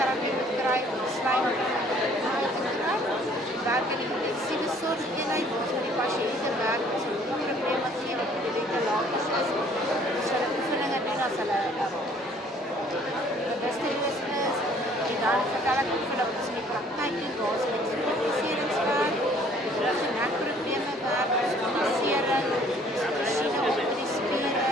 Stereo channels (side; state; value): both; normal; correlation 0.58